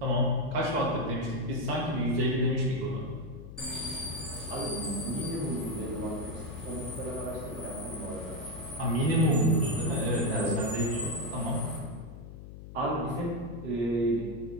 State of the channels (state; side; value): noise; left; hum, 13 dB below the sound